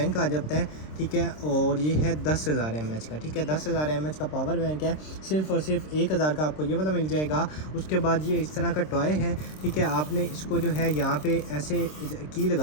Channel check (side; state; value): right; late; 26 ms